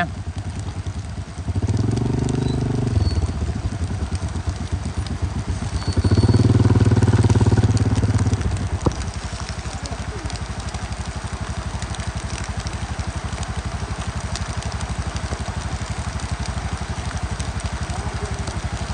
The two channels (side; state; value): both; identical; correlation 1.00